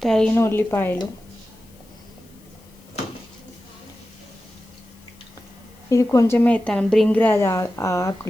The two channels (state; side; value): noise; left; hiss, 28 dB below the sound